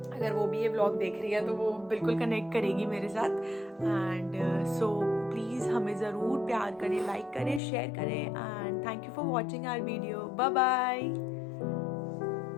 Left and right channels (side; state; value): right; drops out; at 7.6 s